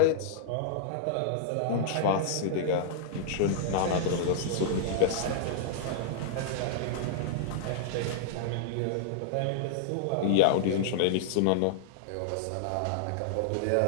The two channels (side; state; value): both; different; correlation -0.01